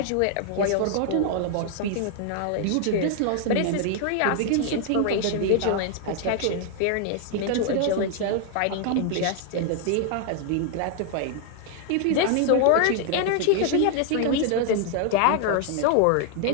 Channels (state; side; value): different; both; correlation 0.00